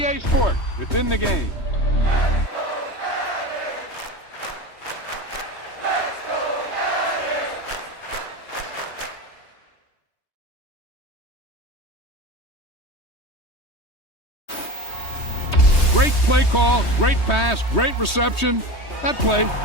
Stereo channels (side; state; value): right; late; 3.2 ms